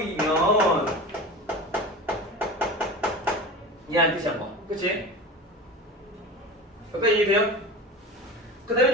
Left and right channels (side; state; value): both; normal; correlation 0.31